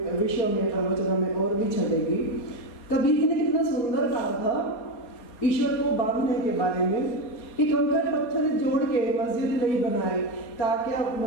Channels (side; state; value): right; late; 4.3 ms